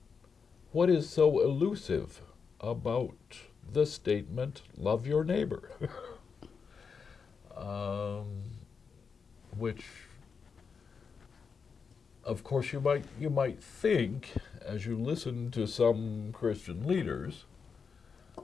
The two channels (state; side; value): quieter; right; 5.7 dB